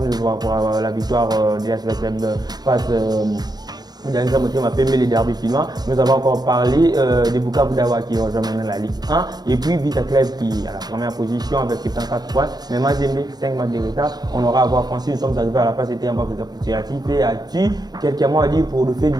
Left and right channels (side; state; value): left; late; 0.19 ms